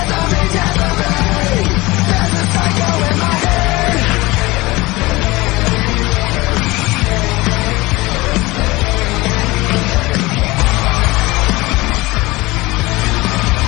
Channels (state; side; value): quieter; right; 21.4 dB